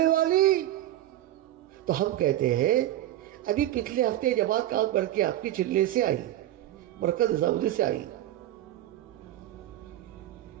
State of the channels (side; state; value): left; quieter; 13.6 dB